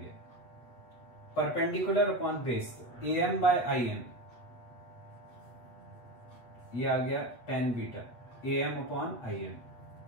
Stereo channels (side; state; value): right; late; 8.4 ms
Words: perpendicular upon base, A M by I M, ये आ गया tan beta A M upon I M.